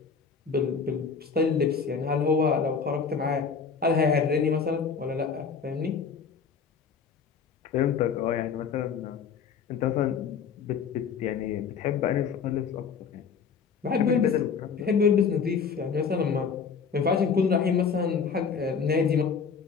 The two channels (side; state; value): right; quieter; 6.0 dB